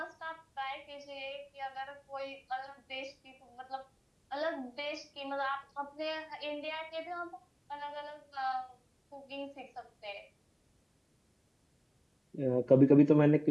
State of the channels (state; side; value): identical; both; correlation 1.00